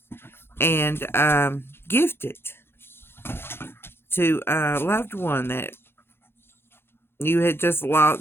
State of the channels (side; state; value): right; late; 0.11 ms